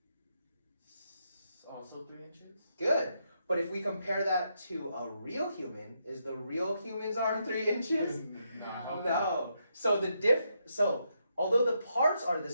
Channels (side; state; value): both; inverted; correlation -0.80